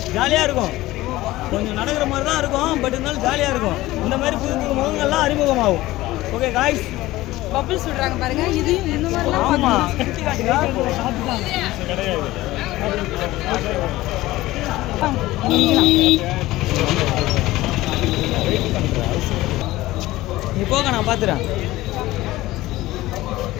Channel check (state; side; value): quieter; right; 17.4 dB